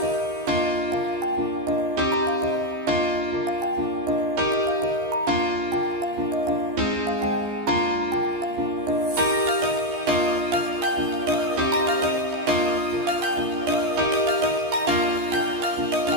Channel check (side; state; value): left; late; 15 ms